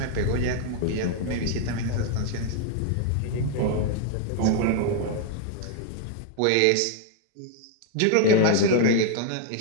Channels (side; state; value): both; different; correlation 0.00